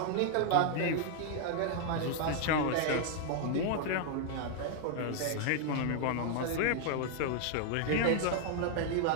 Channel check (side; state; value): both; different; correlation 0.00